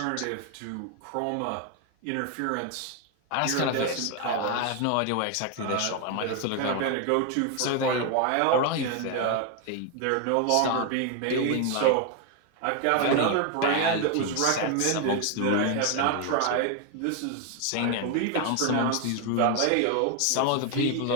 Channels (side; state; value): both; different; correlation 0.01